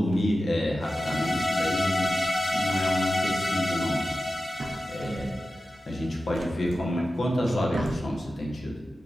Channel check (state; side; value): normal; both; correlation 0.93